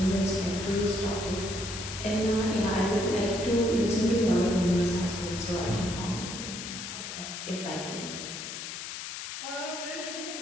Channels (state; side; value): noise; left; hiss, 7 dB below the sound